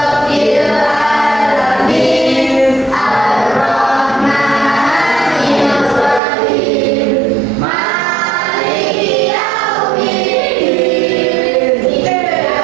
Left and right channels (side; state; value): left; drops out; at 6.2 s